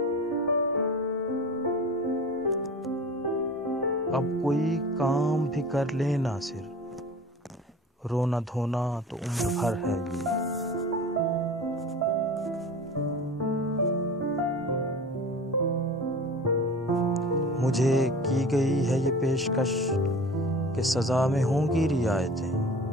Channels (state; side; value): normal; both; correlation 0.38